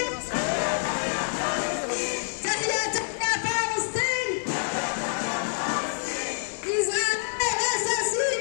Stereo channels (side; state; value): right; silent; digital silence